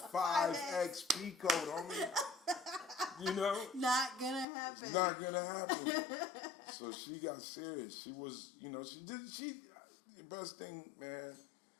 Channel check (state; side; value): drops out; right; at 4.5 s